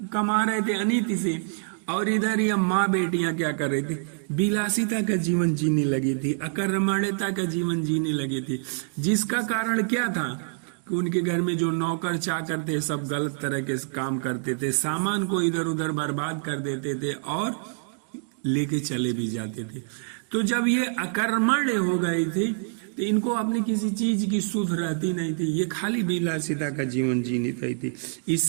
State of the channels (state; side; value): silent; left; digital silence